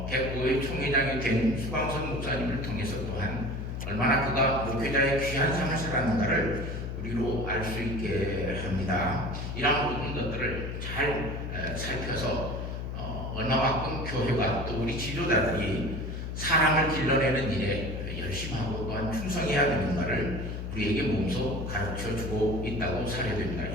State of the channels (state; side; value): noise; left; hum, 5 dB below the sound